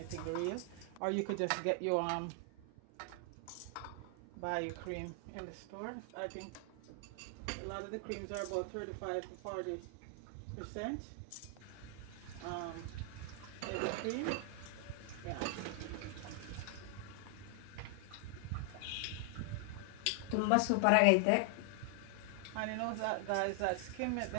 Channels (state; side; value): different; both; correlation 0.00